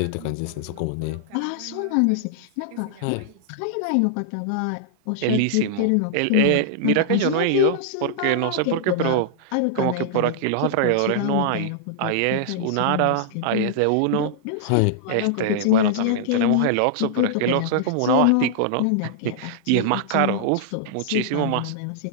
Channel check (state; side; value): different; both; correlation -0.01